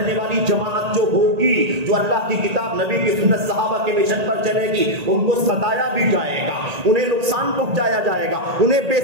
والی جماعت جو ہوگی، جو اللہ کی کتاب، نبی کی سنت، صحابہ کے مشن پر چلے گی، ان کو ستایا بھی جائے گا، انہیں نقصان پہنچایا جائے گا، انہیں بے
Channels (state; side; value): late; left; 1.8 ms